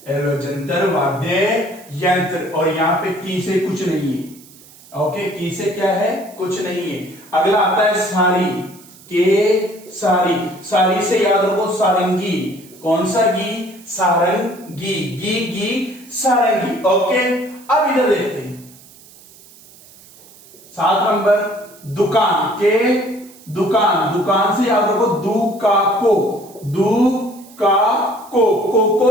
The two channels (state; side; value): noise; right; hiss, 23 dB below the sound